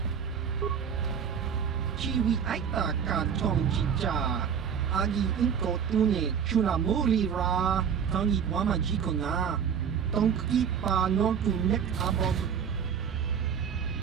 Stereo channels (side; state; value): left; quieter; 7.5 dB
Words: Chiwi aita ka tong jija agi inko tune chuna muri ra tangi wama jiko na tong kipa non tu nek abog